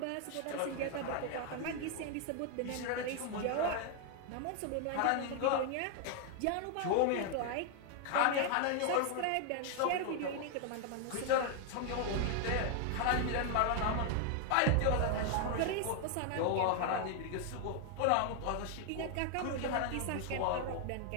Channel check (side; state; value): both; different; correlation 0.00